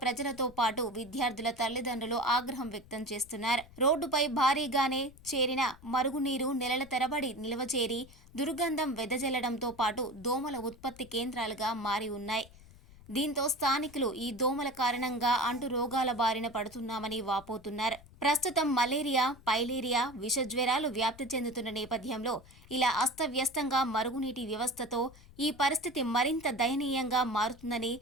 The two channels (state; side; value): noise; left; rumble, 22 dB below the sound